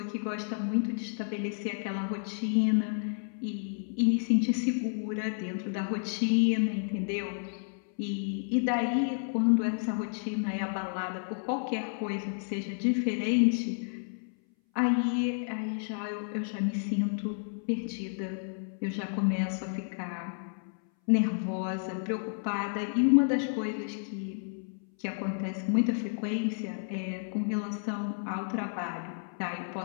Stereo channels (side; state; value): right; silent; 57 dB below the other